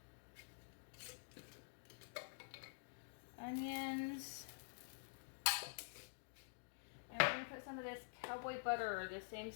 Onions, and we're going to put some of this cowboy butter, or the same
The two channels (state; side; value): silent; right; digital silence